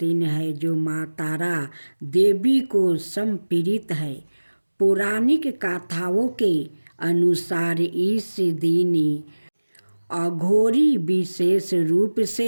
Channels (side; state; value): both; inverted; correlation -1.00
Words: है जो माँ तारा देवी को समर्पित है। पौराणिक कथाओं के अनुसार इस दिन अघोरी विशेष रूप